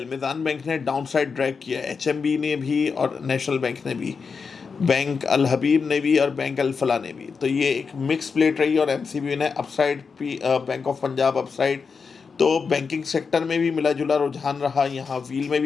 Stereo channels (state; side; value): quieter; right; 5.3 dB